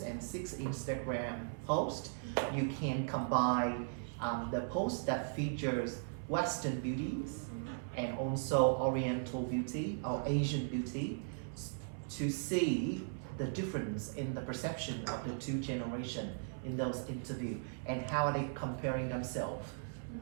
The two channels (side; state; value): left; silent; 52 dB below the other